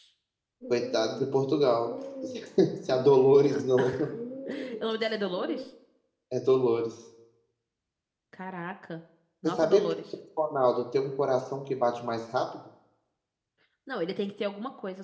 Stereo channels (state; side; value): identical; both; correlation 1.00